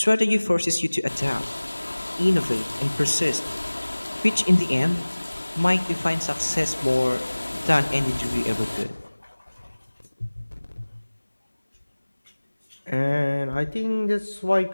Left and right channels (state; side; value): inverted; both; correlation -1.00